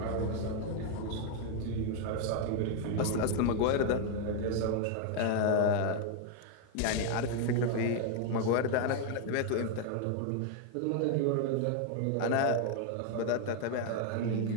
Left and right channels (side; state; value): both; different; correlation 0.00